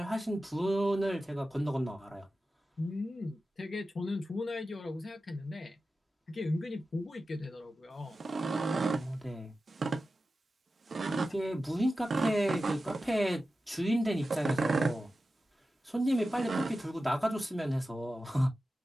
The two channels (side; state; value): both; normal; correlation 0.93